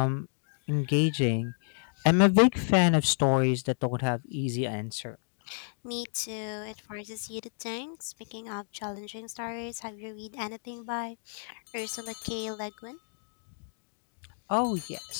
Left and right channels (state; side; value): silent; right; digital silence